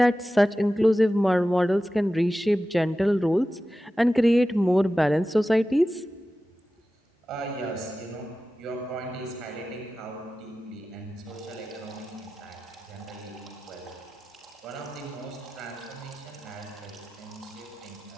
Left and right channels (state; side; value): normal; both; correlation 0.94